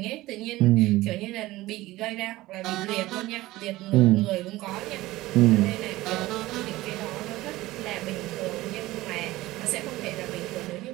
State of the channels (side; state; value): left; quieter; 17.9 dB